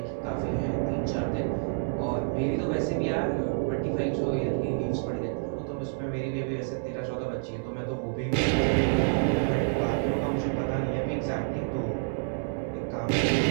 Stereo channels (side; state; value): left; silent; 59 dB below the other